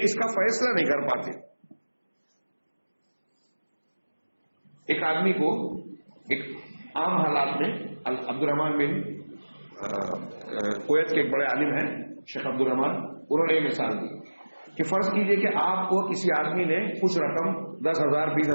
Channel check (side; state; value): both; inverted; correlation -1.00